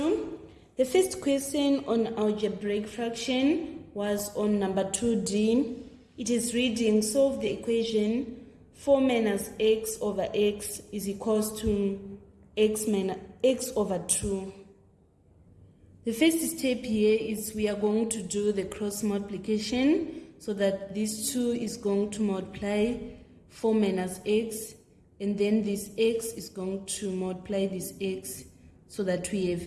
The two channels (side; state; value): both; identical; correlation 1.00